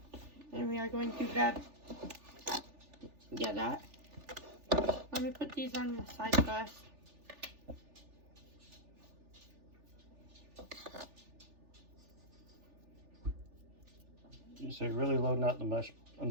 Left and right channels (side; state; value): left; late; 3.4 ms